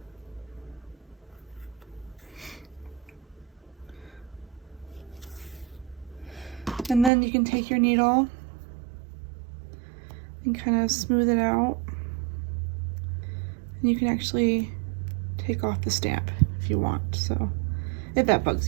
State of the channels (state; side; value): drops out; left; at 7.1 s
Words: And then you can take your needle and kind of smooth it out. And you can actually take off the stamp if you want, so if that bugs